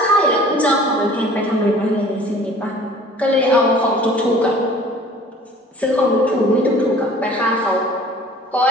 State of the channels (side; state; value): both; normal; correlation 0.49